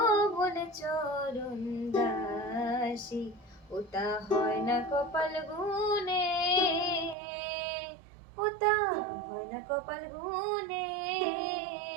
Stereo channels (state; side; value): drops out; left; at 7.2 s